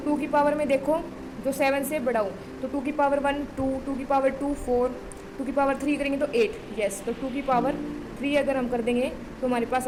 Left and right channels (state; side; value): identical; both; correlation 1.00